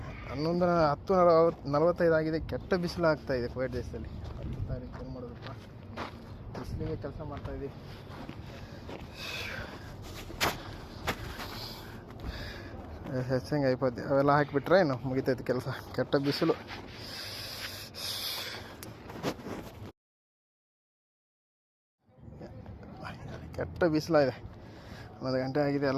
11:45 ಆಗಿದೆ. ಕೆಟ್ಟ ಬಿಸಿಲು ಆಗ್ತಾ ಇದೆ ಕುವೈಟ್ ದೇಶದಲ್ಲಿ. 10 ತಾರೀಕು ಏನು ಮಾಡೋದಪ್ಪ, ಬಿಸಿಲಿಗೆ ಕೆಲಸ ಮಾಡ್ತಾ ಇದ್ದೀವಿ. ಹೆಚ್ಚಂಗೆ అయిపోద్ది. ಅವೆಲ್ಲ ಹಾಕಿಬಿಟ್ರೆ ಏನು ಮುಗಿತೈತಿ ಕೆಲಸ. ಕೆಟ್ಟ ಬಿಸಿಲು. ಕೆಟ್ಟ ಬಿಸಿಲಾಗಿದೆ. 1 ಗಂಟೆ ಆಗಿದೆ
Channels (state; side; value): identical; both; correlation 1.00